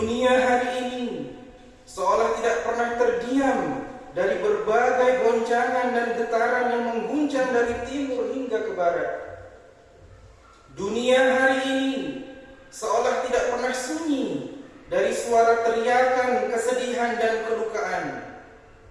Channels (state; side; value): identical; both; correlation 1.00